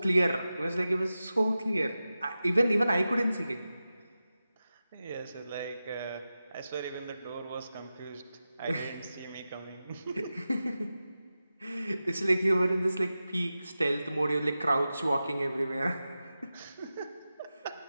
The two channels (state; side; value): inverted; both; correlation -0.93